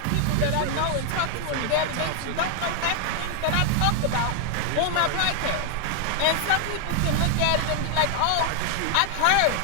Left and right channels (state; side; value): different; both; correlation 0.00